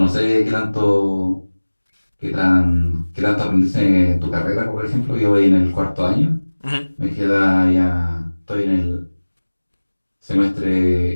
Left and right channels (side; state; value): both; inverted; correlation -1.00